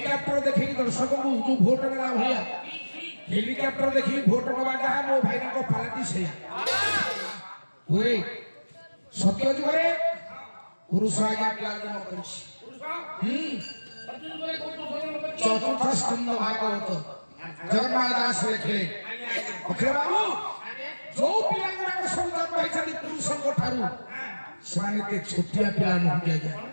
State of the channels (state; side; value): inverted; both; correlation -1.00